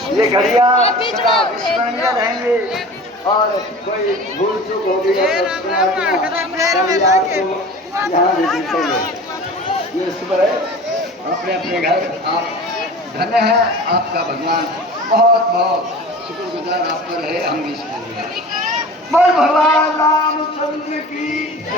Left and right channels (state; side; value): normal; both; correlation 0.38